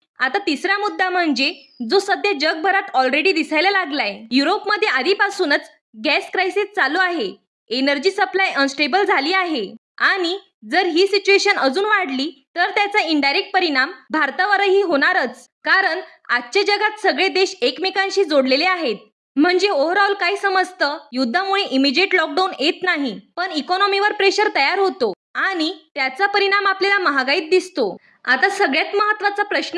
आता तिसरा मुद्दा म्हणजे जो सध्या जगभरात ऑलरेडी दिसायला लागलाय. युरोपमध्ये आधीपासूनच गॅस क्रायसिस चालू आहे, एनर्जी सप्लाय अनस्टेबल झाली आहे आणि जर ही सिच्युएशन अजून वाढली तर त्याचा इनडायरेक्ट परिणाम भारतावरही होणारच. कारण आजच्या जगात सगळे देश एकमेकांशी जोडलेले आहेत. म्हणजे ओव्हरऑल काय समजतं, युद्धामुळे इमिजिएट लॉकडाऊन येत नाही, पण इकॉनॉमीवर प्रेशर तयार होतो आणि त्याचा परिणाम आपल्याला महागाईत दिसतो. आता सगळ्यात महत्वाचा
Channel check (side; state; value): both; identical; correlation 1.00